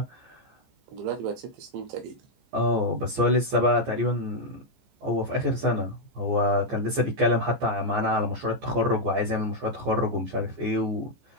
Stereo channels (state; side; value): late; left; 14 ms